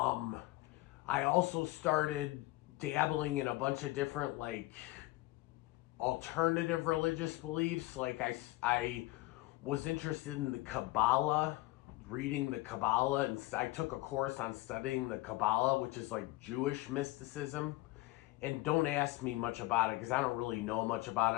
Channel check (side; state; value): right; quieter; 19.6 dB